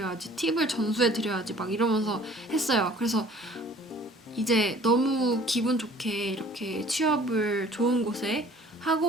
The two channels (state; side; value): normal; both; correlation 0.52